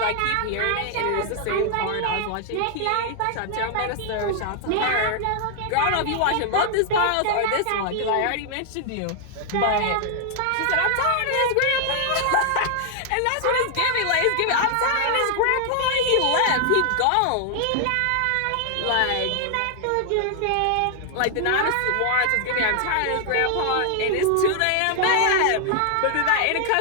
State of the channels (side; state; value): both; different; correlation 0.00